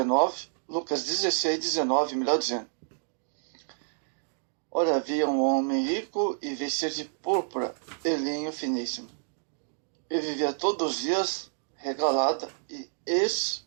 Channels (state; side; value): silent; left; digital silence